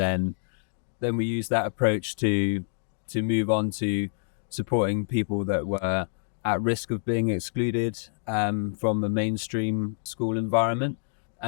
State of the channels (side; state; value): right; silent; digital silence